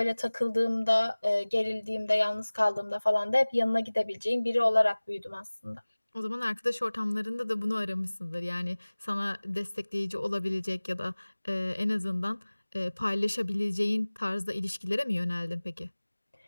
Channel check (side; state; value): both; inverted; correlation -1.00